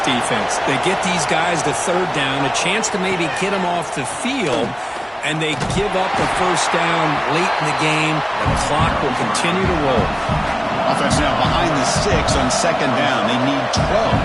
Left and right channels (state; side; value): identical; both; correlation 1.00